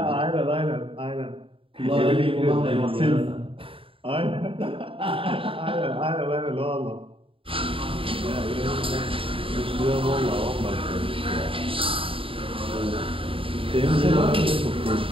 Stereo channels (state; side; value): late; left; 0.26 ms